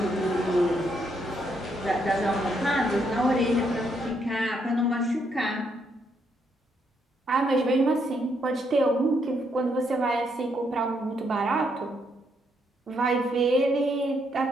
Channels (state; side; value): normal; both; correlation 0.75